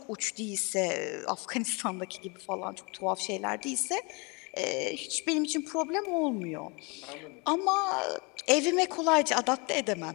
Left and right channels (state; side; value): quieter; right; 30.0 dB